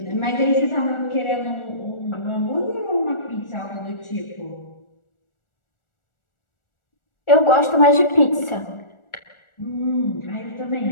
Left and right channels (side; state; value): right; late; 1.4 ms